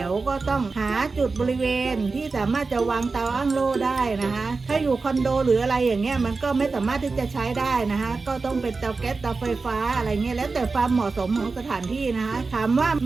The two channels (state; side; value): quieter; left; 4.1 dB